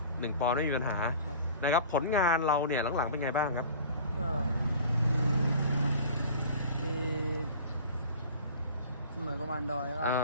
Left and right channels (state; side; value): inverted; both; correlation -0.43